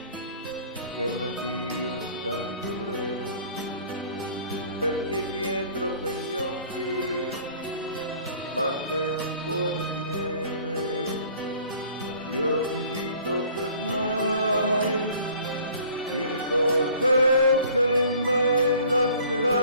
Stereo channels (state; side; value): inverted; both; correlation -0.52